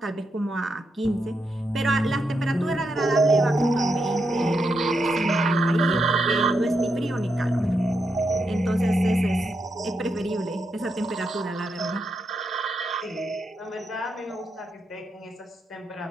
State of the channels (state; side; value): normal; both; correlation 0.83